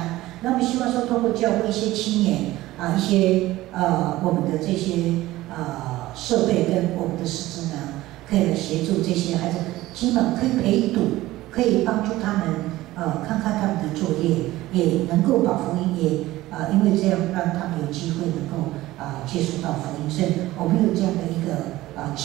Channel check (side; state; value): left; quieter; 17.0 dB